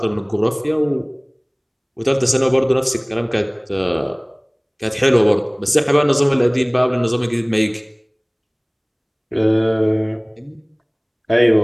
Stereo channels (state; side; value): identical; both; correlation 1.00